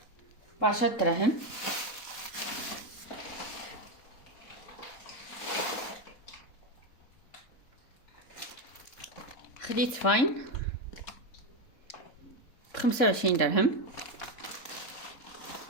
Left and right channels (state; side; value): late; right; 4.1 ms